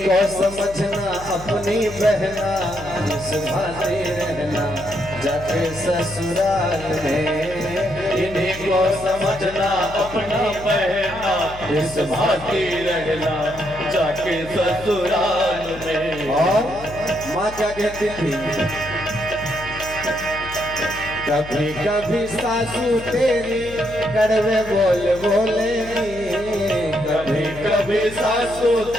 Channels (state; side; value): noise; left; hum, 15 dB below the sound